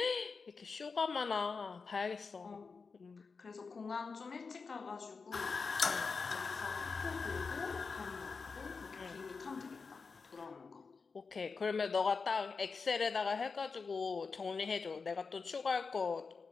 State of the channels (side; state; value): right; quieter; 4.8 dB